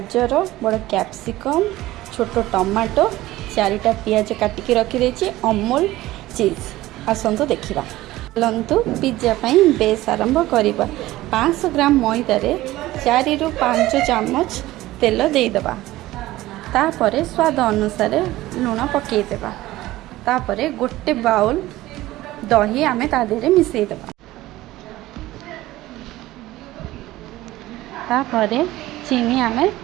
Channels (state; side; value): quieter; left; 16.8 dB